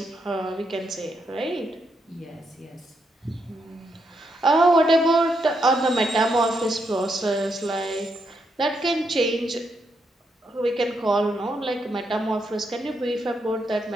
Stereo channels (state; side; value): normal; both; correlation 0.80